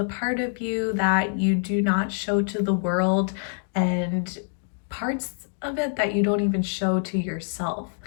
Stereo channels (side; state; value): right; silent; digital silence